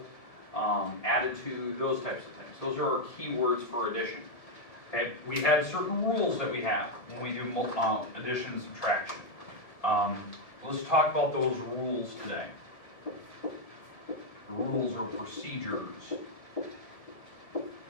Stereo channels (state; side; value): late; right; 1.7 ms